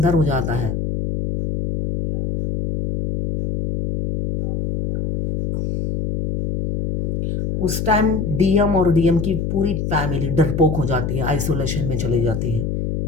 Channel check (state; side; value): noise; left; hum, 2 dB below the sound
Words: हो जाता है। उस टाइम डीएम और डीएम की पूरी फैमिली डरपोक हो जाती है, आइसोलेशन में चली जाती है।